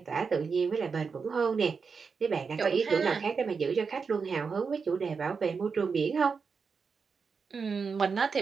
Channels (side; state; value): left; quieter; 5.4 dB